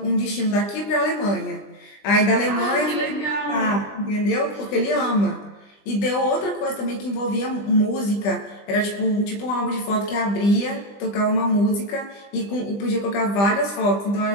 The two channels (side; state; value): right; late; 20 ms